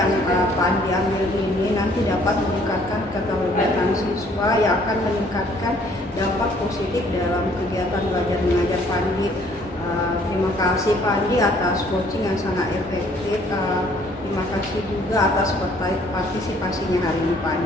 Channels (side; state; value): both; normal; correlation 0.61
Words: Pak Andi ambil ini nanti dapat meningkatkan keterlibatan siswa siswa yang akan meningkatkan dampak positif dalam kegiatan belajar mengajar Pandi. Terima kasih Pandi atas coaching yang sangat efektif. Terima kasih juga atas partisipasinya hari ini